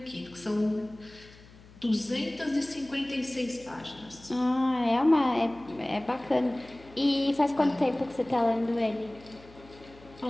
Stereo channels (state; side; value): noise; left; hum, 22 dB below the sound